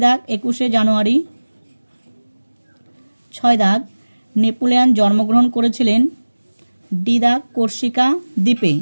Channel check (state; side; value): inverted; both; correlation -1.00